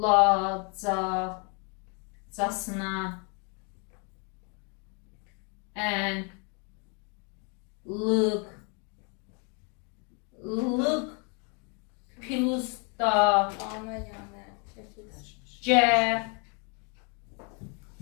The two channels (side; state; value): right; quieter; 35.9 dB